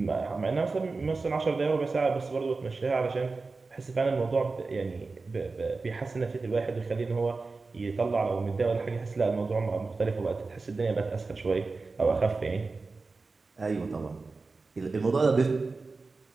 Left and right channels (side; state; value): left; quieter; 3.9 dB